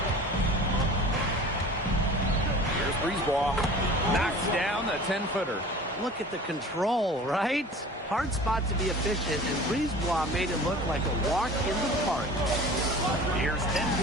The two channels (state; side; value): normal; both; correlation 0.41